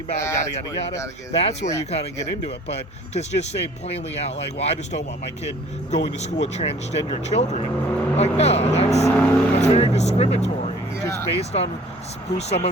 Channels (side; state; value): both; normal; correlation 0.52